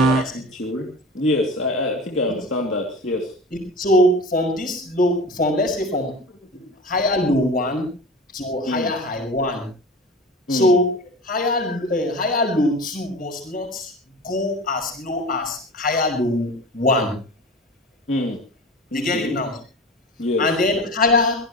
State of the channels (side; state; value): both; normal; correlation 0.33